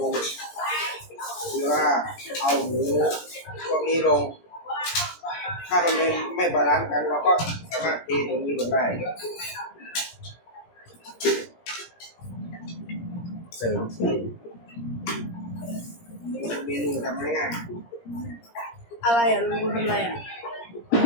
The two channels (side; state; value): right; late; 17 ms